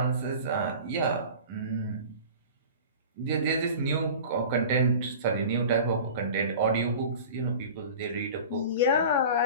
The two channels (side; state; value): both; inverted; correlation -0.38